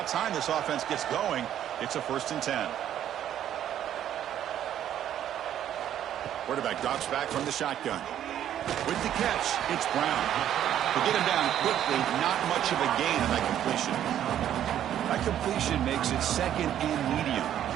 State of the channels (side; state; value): left; quieter; 10.8 dB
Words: time this offense gets going. It's a 1st and 10. Quarterback drops back from the shotgun. With the catch, it's Brown. To get him down quickly, not much of a gain on that completion. That completion makes it second and medium.